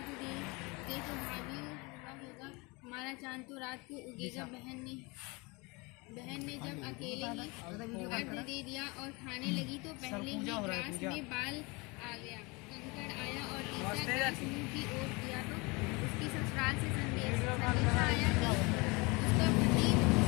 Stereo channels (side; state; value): right; quieter; 26.7 dB